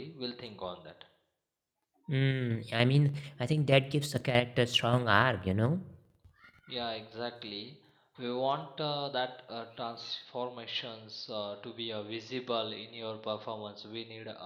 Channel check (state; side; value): identical; both; correlation 1.00